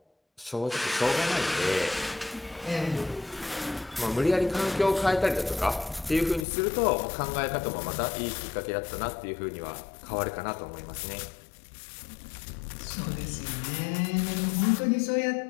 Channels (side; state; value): right; drops out; at 6.5 s